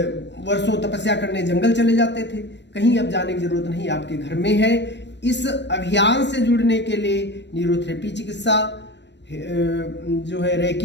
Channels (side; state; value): right; late; 0.51 ms